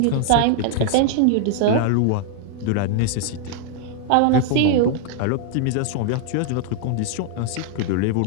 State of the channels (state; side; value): different; both; correlation -0.01